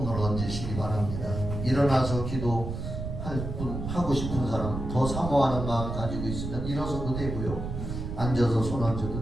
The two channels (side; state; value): right; noise; rumble, 5 dB below the sound